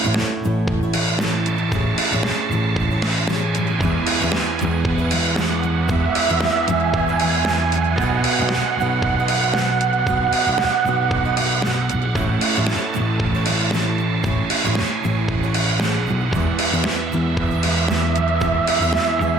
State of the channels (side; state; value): both; normal; correlation 0.66